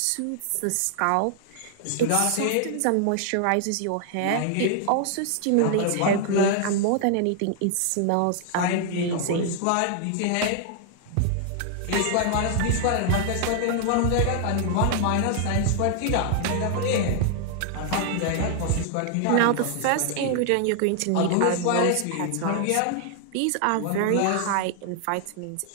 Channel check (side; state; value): both; different; correlation 0.00